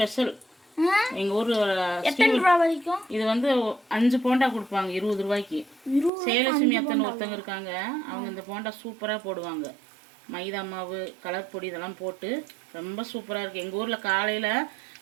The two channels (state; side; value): drops out; left; at 6.1 s